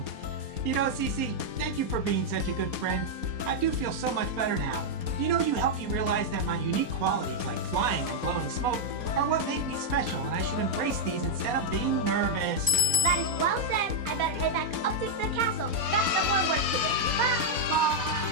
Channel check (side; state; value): left; late; 4.2 ms